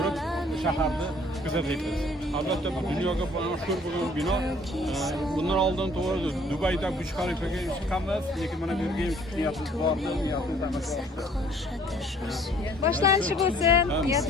shaharni kuzatyapmiz. Albatta bu dunyoga mashhur bo'lgan bino. Bundan oldin to'g'ri Dubayda Burj Khalifaga chiqqanmiz, lekin mana bu yerga niyatimiz bor, niyatimiz amalga oshdi. Boshlanishi bo'lsin,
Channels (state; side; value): normal; both; correlation 0.57